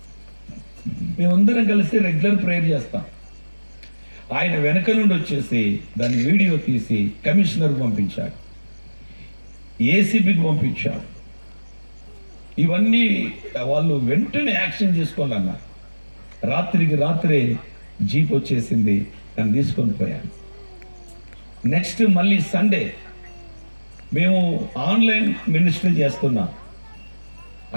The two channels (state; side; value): inverted; both; correlation -1.00